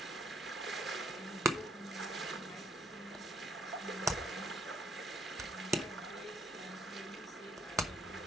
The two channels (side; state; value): both; normal; correlation 0.69